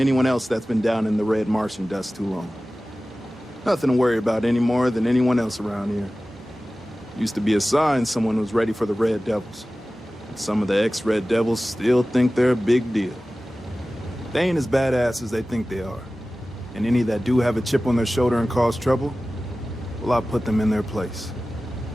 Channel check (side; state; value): both; normal; correlation 0.96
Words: else that's been down in the red Martian dust too long. Nothing to worry about any more than anyone else around here. Used to be a sign someone was ready for the Red Devils. And some of the ex-Red Devils still think they're a big deal. They ain't as badass as they think they are. And any that do have a chip on their shoulder and cause trouble, well, I'll put them in their place.